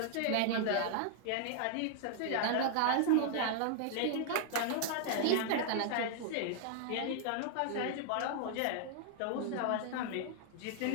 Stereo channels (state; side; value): different; both; correlation 0.00